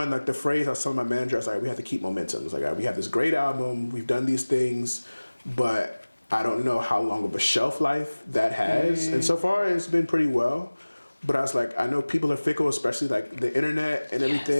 like the phrase I was telling my manager, I was like, we have to keep momentum. It's like, we have this great album, we've done these things, but I don't know how long of a shelf life that has. And so far it's been pretty well. But I was like, I know people are fickle, especially like the internet and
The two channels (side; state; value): both; inverted; correlation -1.00